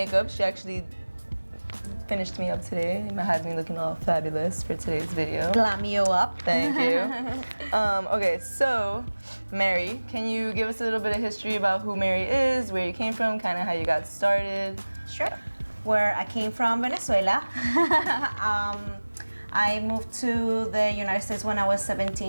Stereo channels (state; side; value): inverted; both; correlation -1.00